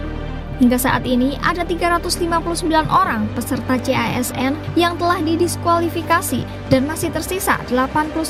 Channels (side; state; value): both; identical; correlation 1.00